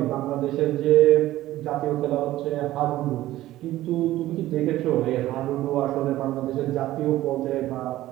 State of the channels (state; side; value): quieter; left; 15.2 dB